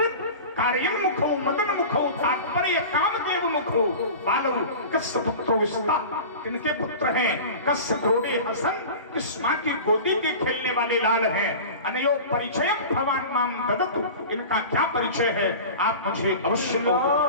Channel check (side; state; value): both; inverted; correlation -0.34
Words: कार्यन मुखो मदन मुखो तात्पर्य कामदेव मुखो बालव कस्य पुत्रो विस्ता किनके पुत्र हैं कस्य क्रोड़े हसन किस माँ की गोदी के खेलने वाले लाल हैं अनयो परिचय भगवान माम ददतु इनका क्या परिचय है आप मुझे अवश्य